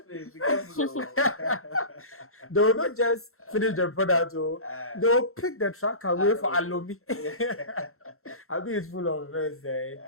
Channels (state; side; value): late; right; 0.62 ms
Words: they will not just finish the product, they will pick the track away for Alomi. I mean, it's full of verse